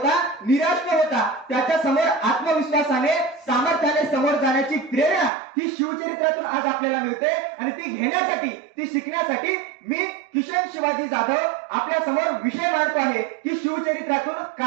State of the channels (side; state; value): left; drops out; at 5.3 s